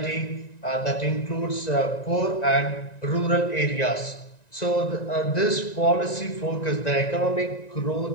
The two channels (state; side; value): late; right; 1.9 ms